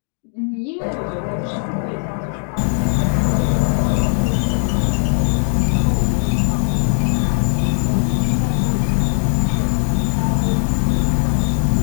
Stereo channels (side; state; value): right; silent; 64 dB below the other